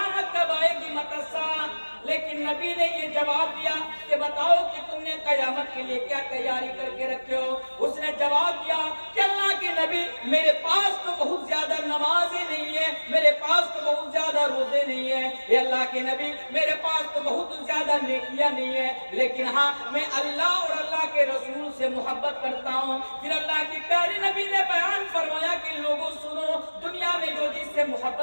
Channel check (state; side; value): inverted; both; correlation -1.00